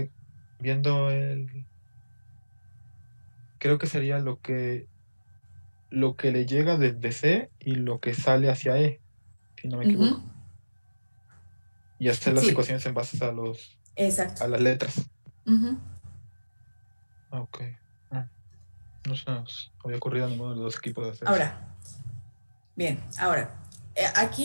viendo el... Creo que sería lo que le llega desde C y lo que sale hacia E, si no me equivoco. Y hacer las Sí. ecuaciones en base a Exacto. a las letras. Ujú. Ok. No se nos había ocurrido a ninguno de los dos equipos de hacer eso. Ahora, bien, ahora,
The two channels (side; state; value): both; inverted; correlation -1.00